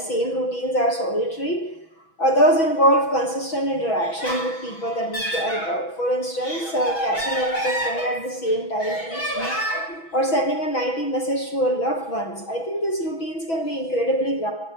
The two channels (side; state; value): right; late; 6.1 ms